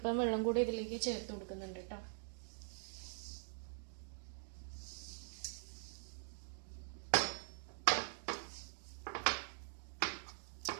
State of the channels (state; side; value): silent; left; digital silence